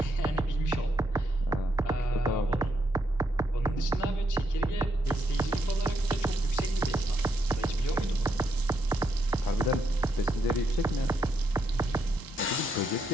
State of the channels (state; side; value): normal; both; correlation 0.78